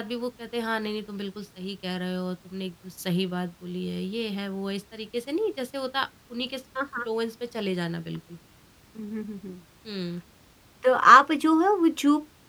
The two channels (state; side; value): identical; both; correlation 1.00